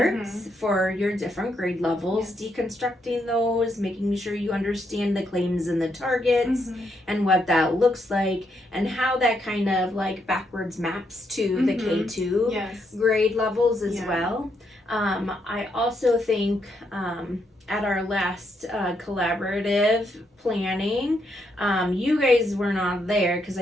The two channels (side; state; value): both; normal; correlation 0.77